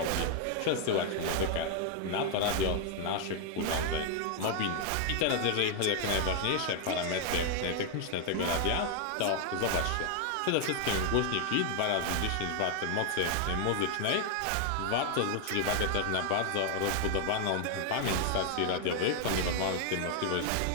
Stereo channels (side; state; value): both; different; correlation 0.00